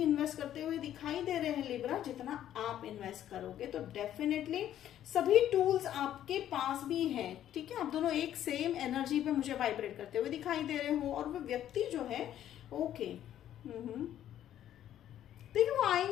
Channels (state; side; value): quieter; right; 11.4 dB